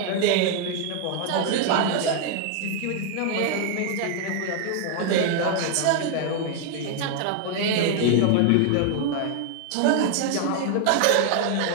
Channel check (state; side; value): different; both; correlation 0.00